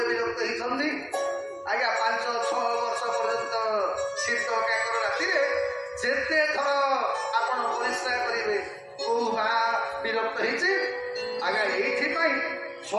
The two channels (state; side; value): identical; both; correlation 1.00